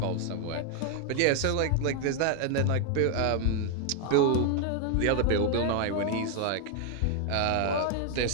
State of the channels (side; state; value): both; different; correlation 0.00